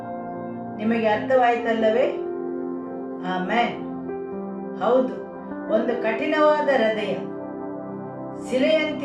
ನಿಮಗೆ ಅರ್ಥವಾಯಿತಲ್ಲವೇ? ಆಮೆನ್. ಹೌದು, ಒಂದು ಕಠಿಣವಾದ ಹೃದಯ,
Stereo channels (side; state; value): both; identical; correlation 1.00